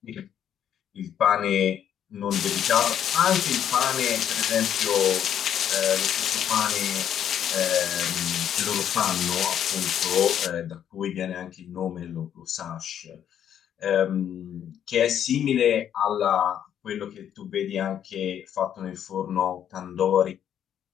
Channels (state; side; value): quieter; right; 9.6 dB